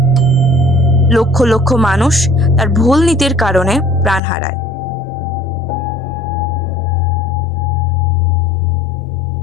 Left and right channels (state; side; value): drops out; right; at 4.2 s